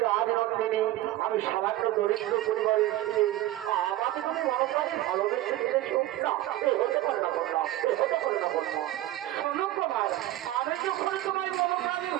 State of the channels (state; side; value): quieter; left; 15.0 dB